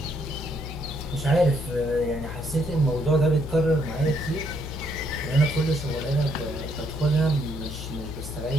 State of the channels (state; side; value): noise; left; hum, 8 dB below the sound